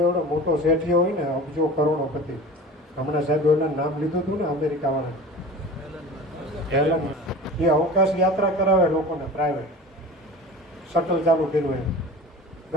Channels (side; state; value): both; normal; correlation 0.37